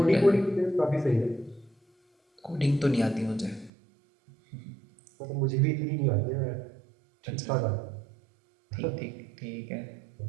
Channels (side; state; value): left; drops out; at 3.7 s